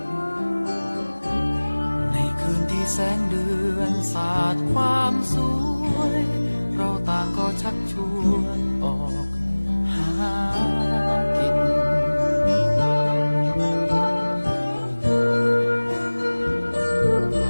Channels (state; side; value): inverted; both; correlation -1.00